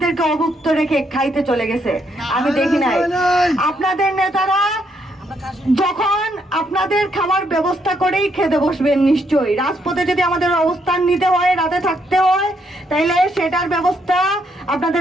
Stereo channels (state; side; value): normal; both; correlation 0.74